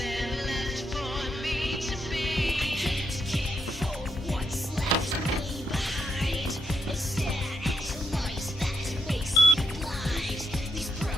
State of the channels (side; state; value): both; normal; correlation 0.79